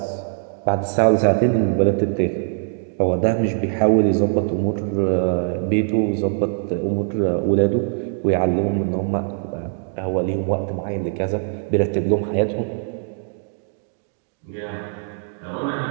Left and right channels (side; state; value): left; silent; digital silence